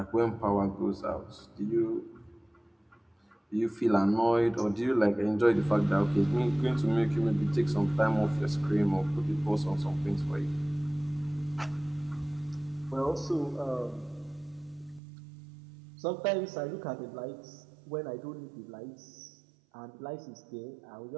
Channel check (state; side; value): drops out; left; at 15.0 s